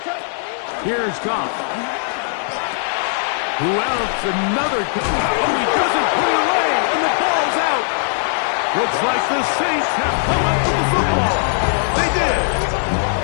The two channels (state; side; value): silent; right; digital silence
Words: Here's Goff. Who else? Another. Oh, he doesn't put it away, and the ball's out. Looks like the Saints have come up with the football. They did.